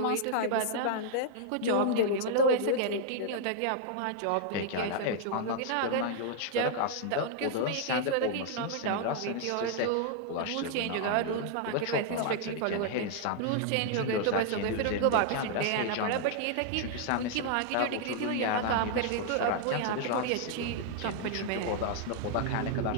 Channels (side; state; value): both; different; correlation -0.01